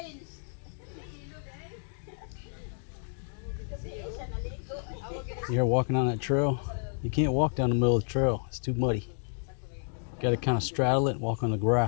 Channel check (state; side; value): silent; right; 57 dB below the other